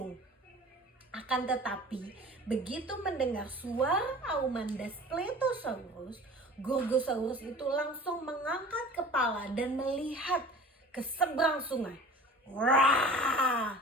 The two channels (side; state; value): both; normal; correlation 0.42